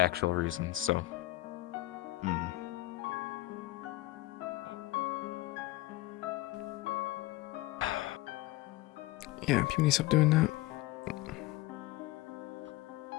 reasons. So. Yeah, people need to stop doing that.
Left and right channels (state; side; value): quieter; right; 18.1 dB